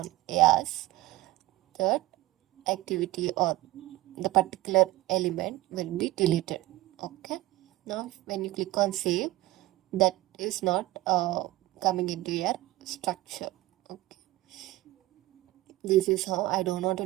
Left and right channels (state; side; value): quieter; left; 17.4 dB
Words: yes, that activity or the particular element will be deleted. Okay, now when you click on save, that is not coming into your structure. Okay, this is how. I don't want to